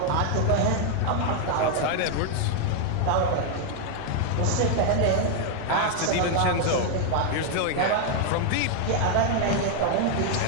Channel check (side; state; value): both; different; correlation 0.00